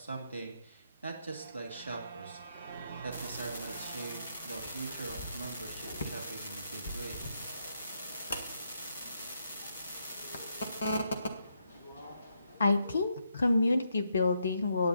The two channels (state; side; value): inverted; both; correlation -0.79